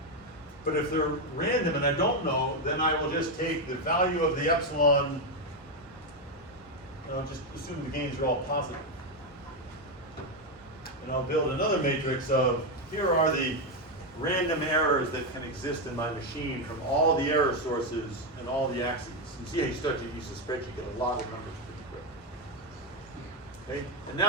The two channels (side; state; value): both; normal; correlation 0.06